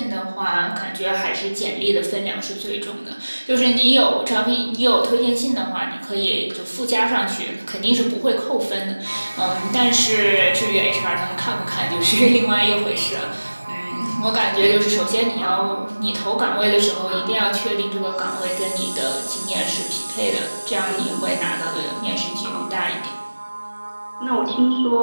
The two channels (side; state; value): both; inverted; correlation -1.00